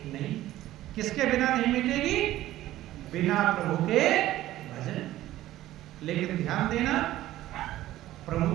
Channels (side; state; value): left; quieter; 14.8 dB